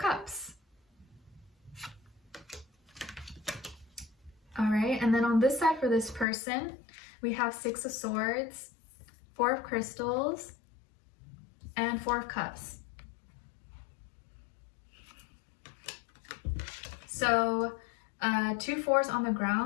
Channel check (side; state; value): right; drops out; at 6.2 s